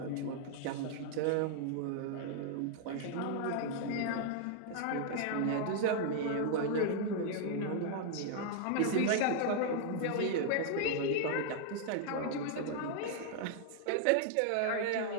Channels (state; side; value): different; both; correlation 0.00